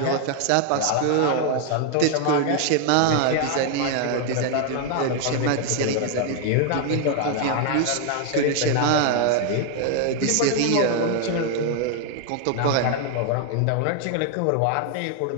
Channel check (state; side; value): different; both; correlation 0.00